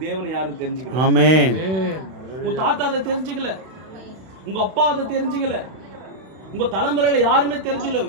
தேவனை யாரும் தெரிஞ்சுக்கல. ஆமென். உன் தாத்தா அதை தெரிஞ்சுக்கல, உங்க அப்பா அதை தெரிஞ்சுக்கல, உங்க தலைமுறையில யாருமே தெரிஞ்சுக்கல.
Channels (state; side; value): late; left; 32 ms